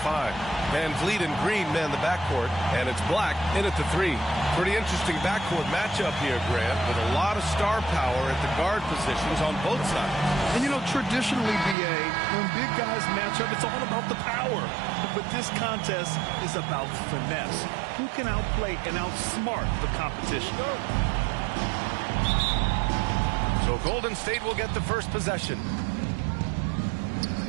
5. VanVleet and Green man the backcourt. And it's Black in at the 3. Pretty interesting backcourt matchup here, Grant, with a lot of star power at the guard positions on both sides. And, you know, traditionally, B.A., when big guys match up, it's all about the power. But this contest is about finesse. Who can outplay and outsmart the competition? So Golden State will get the first possession.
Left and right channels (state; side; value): drops out; left; at 11.8 s